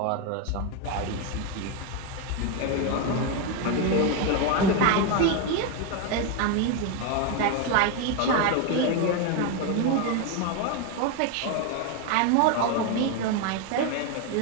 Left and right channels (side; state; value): both; different; correlation 0.02